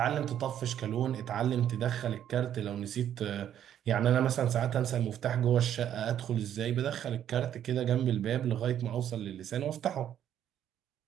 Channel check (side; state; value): left; quieter; 10.3 dB